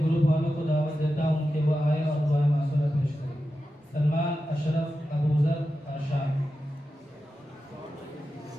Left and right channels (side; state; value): both; normal; correlation 0.91